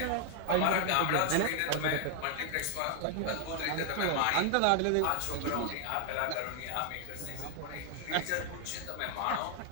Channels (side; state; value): both; different; correlation 0.00